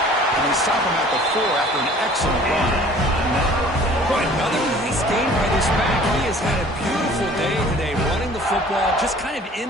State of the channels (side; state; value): both; normal; correlation 0.50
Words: And they stop him at the 4 after an excellent run. Boy, another nice game by this back. He has had a beautiful day today running the football, just kind of